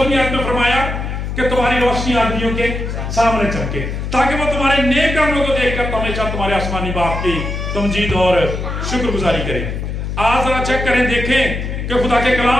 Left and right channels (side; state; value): left; noise; hum, 4 dB below the sound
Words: आयत में फरमाया कि तुम्हारी रोशनी आदमियों के सामने चमके ताकि वो तुम्हारे नेक कामों को देखकर हमेशा तुम्हारे आसमानी बाप की तमजीद और शुक्रगुजारी करें। आज जरा चेक करें, देखें कि खुदा के